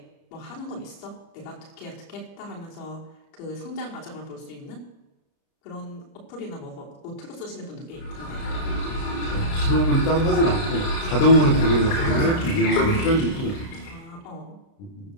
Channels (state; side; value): late; right; 30 ms